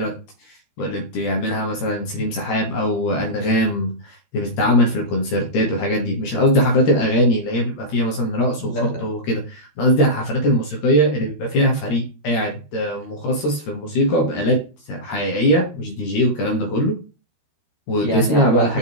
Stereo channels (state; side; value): late; right; 13 ms